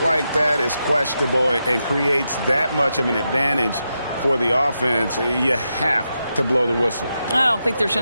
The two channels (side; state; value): both; inverted; correlation -0.86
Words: like that is questionable and creates that much of an advantage for the offense, you have to blow the whistle. I don't think there's